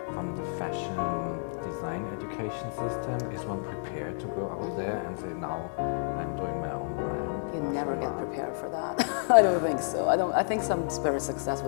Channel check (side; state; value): right; silent; digital silence